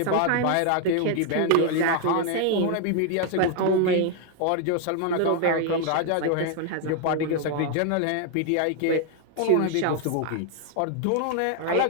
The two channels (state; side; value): different; both; correlation 0.00